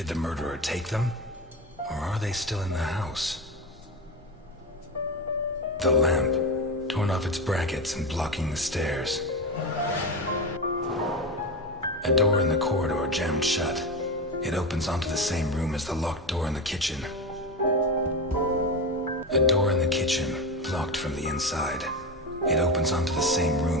the murderer take them? Or are they still in the house? The lamp, torn off its brackets and blocking the stairs. A door in the corridor jammed shut. It opens onto the same room as the locked door in the kitchen. A door in the kitchen, locked from the inside. It opens onto the same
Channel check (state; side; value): normal; both; correlation 0.20